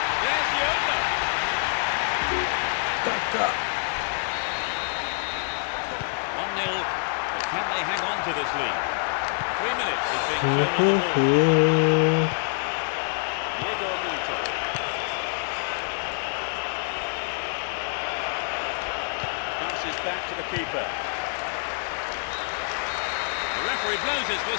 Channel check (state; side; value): silent; right; 61 dB below the other